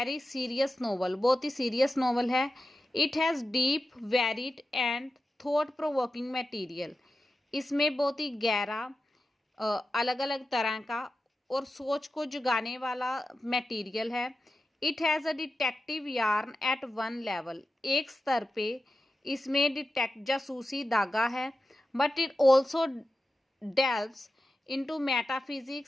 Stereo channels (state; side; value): normal; both; correlation 0.92